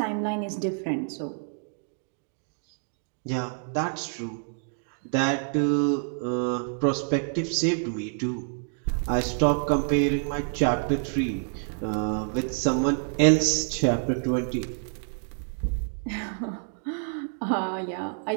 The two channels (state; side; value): silent; left; 59 dB below the other